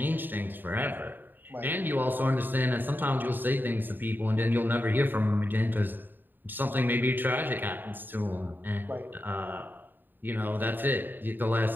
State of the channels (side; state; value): left; late; 0.092 ms